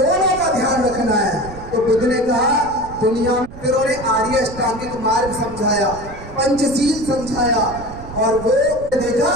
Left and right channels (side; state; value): right; noise; rumble, 15 dB below the sound